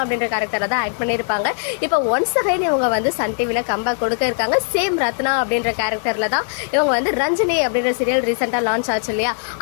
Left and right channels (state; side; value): silent; right; digital silence